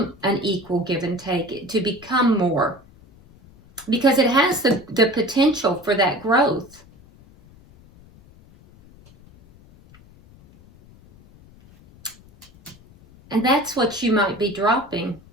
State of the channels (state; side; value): noise; left; rumble, 25 dB below the sound